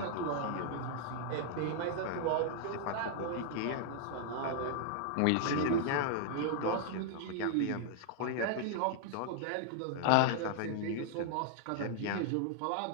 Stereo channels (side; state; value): both; different; correlation -0.01